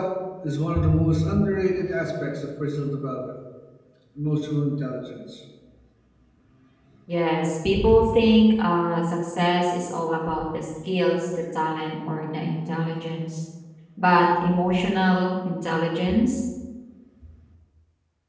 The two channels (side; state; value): both; identical; correlation 1.00